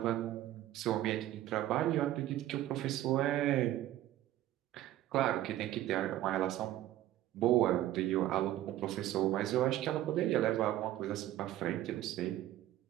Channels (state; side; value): quieter; left; 13.8 dB